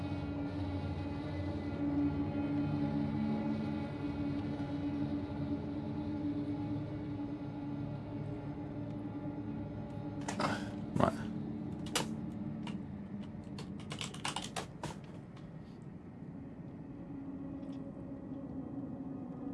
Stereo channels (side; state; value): both; identical; correlation 1.00